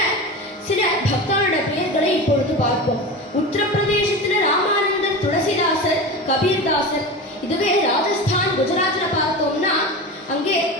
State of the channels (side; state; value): both; normal; correlation 0.27